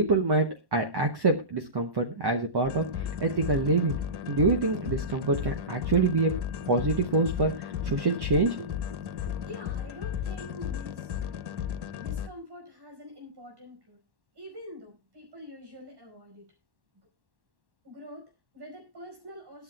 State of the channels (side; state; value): left; late; 1.1 ms